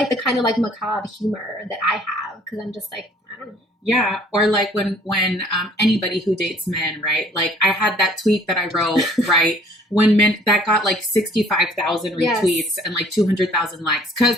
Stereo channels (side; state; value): both; normal; correlation 0.56